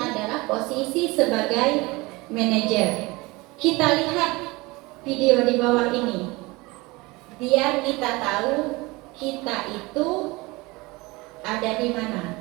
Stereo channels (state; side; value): quieter; left; 23.1 dB